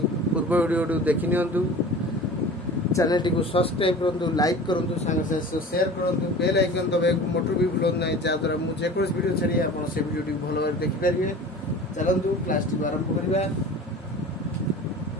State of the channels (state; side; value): normal; both; correlation 0.39